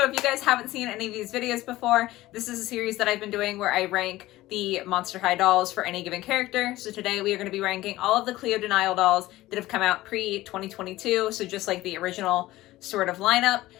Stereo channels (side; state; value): right; quieter; 16.9 dB